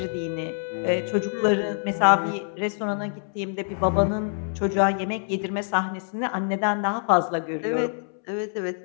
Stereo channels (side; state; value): right; silent; 61 dB below the other